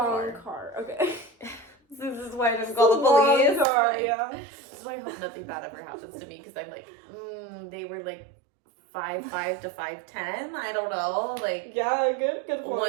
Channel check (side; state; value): left; drops out; at 3.7 s